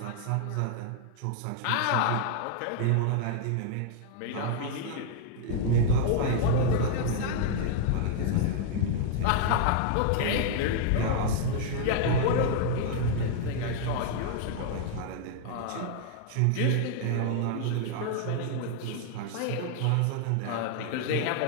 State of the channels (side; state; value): both; different; correlation 0.00